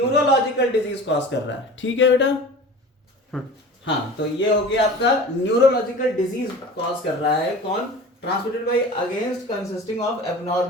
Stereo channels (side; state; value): both; normal; correlation 0.38